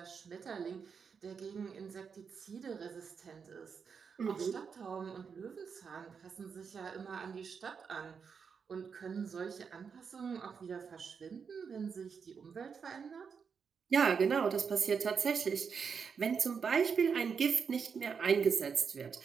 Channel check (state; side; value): quieter; left; 6.2 dB